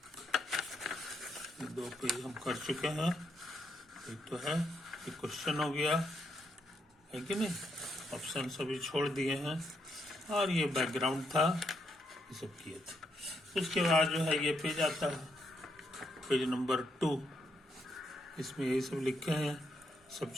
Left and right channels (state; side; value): normal; both; correlation 0.77